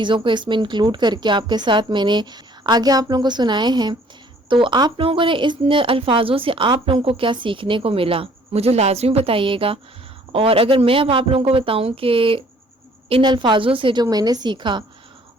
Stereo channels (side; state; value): both; normal; correlation 0.58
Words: کو اس میں انکلوڈ کر کے آپ کے ساتھ میں نے آگے آپ لوگوں کو سنائے ہیں۔ تو آپ لوگوں نے اس الفاظوں سے آپ لوگوں کو کیا سیکھنے کو ملا، مجھے لازمی بتائیے گا۔ اور اگر میں اب آپ لوگوں کو بتاؤں کہ ان الفاظوں سے جو میں نے سیکھا